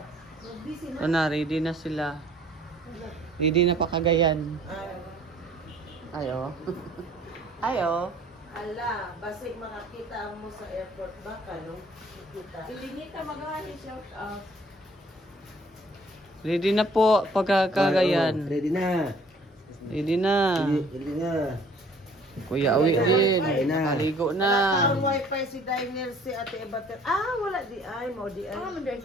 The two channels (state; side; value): normal; both; correlation 0.56